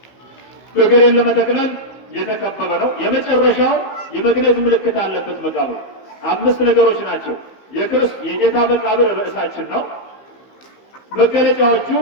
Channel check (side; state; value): right; late; 15 ms